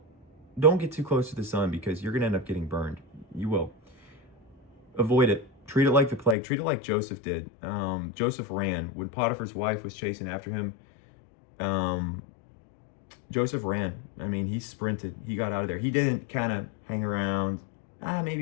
get too close to the sun, because you're going to end up getting burned. You will. Avoid it. Treat it like the plague. Treat it like Joseph did. Joseph ran. When Potiphar's wife was chasing after him, Joseph ran. He sprinted. He got out of there. He didn't kind of hang around.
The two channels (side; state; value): right; drops out; at 6.4 s